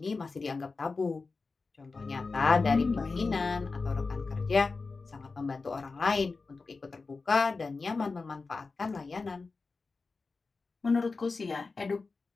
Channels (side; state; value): right; quieter; 4.1 dB